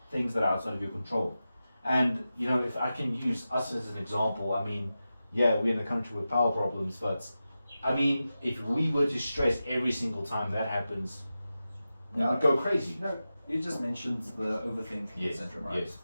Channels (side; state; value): both; inverted; correlation -0.93